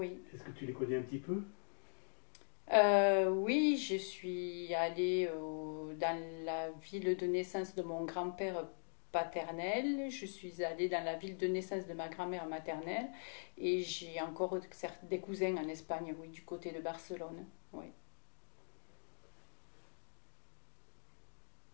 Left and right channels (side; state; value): right; silent; digital silence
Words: Est-ce que tu les connais un petit peu? Oui, je suis allée dans la ville de naissance de mon grand-père paternel. Je suis allée dans la ville de naissance de ma grand-mère maternelle. Et j'ai encore des cousins en Espagne, oui, du côté de Barcelone. Oui.